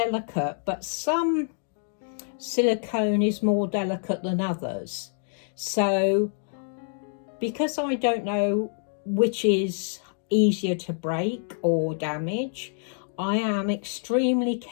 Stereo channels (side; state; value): right; silent; digital silence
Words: but some silicone is more delicate than others. So because I don't know which is easier to break or damage, I am extremely